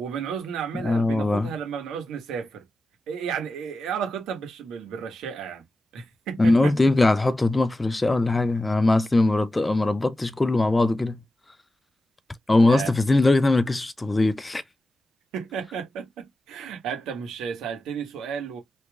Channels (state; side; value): normal; both; correlation 0.92